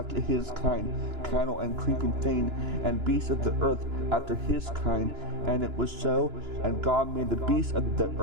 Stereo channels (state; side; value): late; left; 2.9 ms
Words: his kind, cattle and creeping thing, and beasts of the earth after his kind." And it was so. And God made the beasts of the